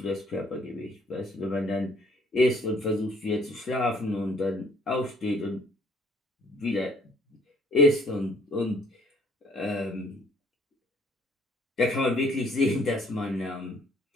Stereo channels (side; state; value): both; normal; correlation 0.61